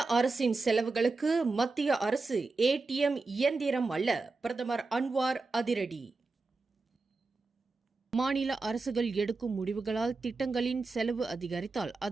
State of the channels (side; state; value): left; quieter; 3.8 dB